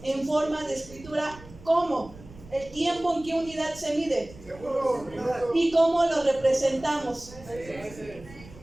en forma de escritura. ¿Cómo? El tiempo en qué unidad se mide y cómo lo representamos.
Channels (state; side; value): noise; right; rumble, 19 dB below the sound